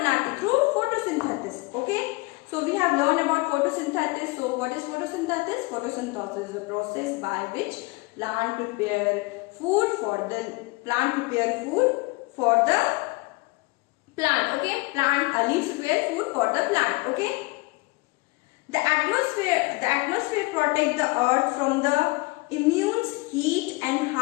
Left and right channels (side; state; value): right; quieter; 24.9 dB